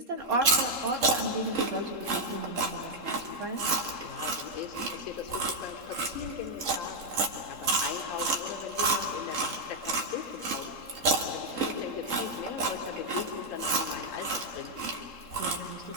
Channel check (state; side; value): late; left; 3.7 ms